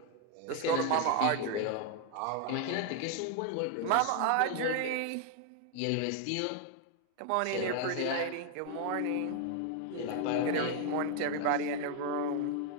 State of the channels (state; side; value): different; both; correlation 0.01